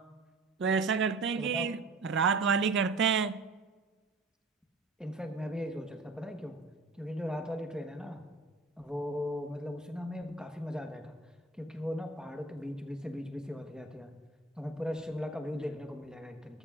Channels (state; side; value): quieter; left; 3.6 dB